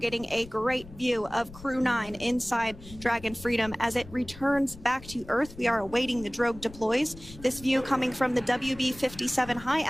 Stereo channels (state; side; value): noise; left; rumble, 17 dB below the sound